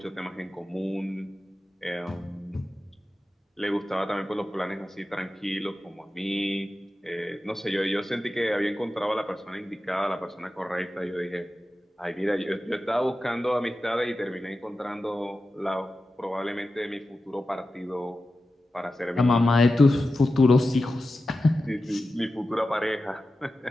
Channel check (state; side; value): normal; both; correlation 0.93